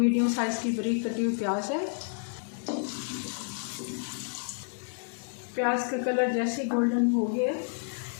साइज़ की बारीक कटी हुई प्याज है। प्याज का कलर जैसे गोल्डन हो गया,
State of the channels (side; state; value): right; silent; 58 dB below the other